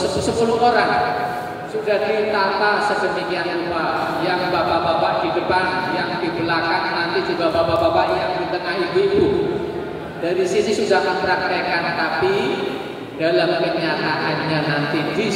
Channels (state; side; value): identical; both; correlation 1.00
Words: orang sudah ditata sedemikian rupa, yang bapak-bapak di depan, yang di belakang, nanti juga bapak-bapak yang di tengah, ibu-ibu dari sini sudah mempraktekkan. Tapi dalam kenyataannya nanti di